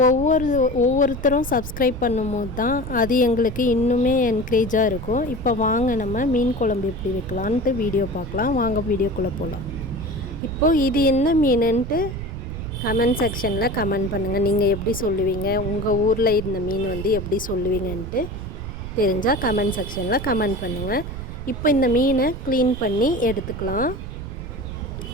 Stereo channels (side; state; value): right; noise; rumble, 10 dB below the sound